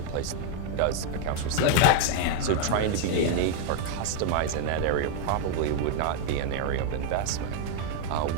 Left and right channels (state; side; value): different; both; correlation 0.01